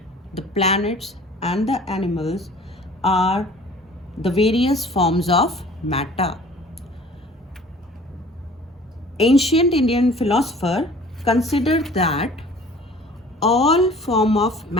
the planets, and the animals are the various forms of matter. Ancient Indian philosopher considered that all form of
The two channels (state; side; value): normal; both; correlation 0.49